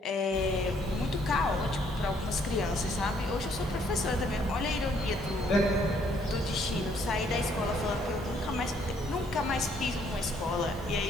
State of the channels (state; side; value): normal; both; correlation 0.66